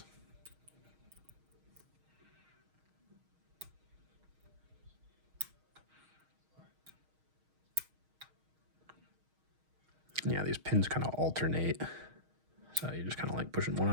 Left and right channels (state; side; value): late; left; 6.4 ms